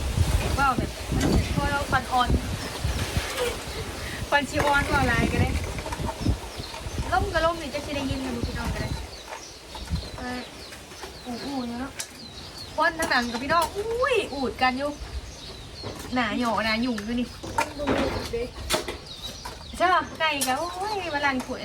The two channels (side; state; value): both; identical; correlation 1.00